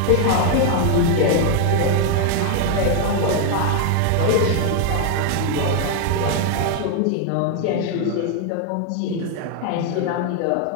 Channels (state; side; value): different; both; correlation 0.00